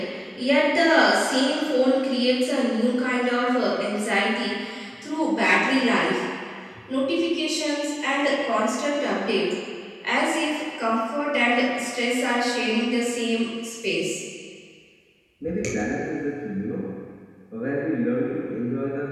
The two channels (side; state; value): both; identical; correlation 1.00